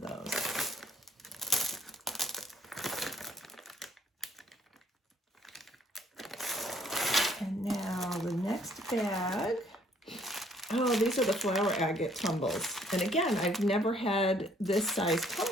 those. And now the next bag. Oh, these are the flower agate tumbles. And again, I've never had this size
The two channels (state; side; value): normal; both; correlation 0.63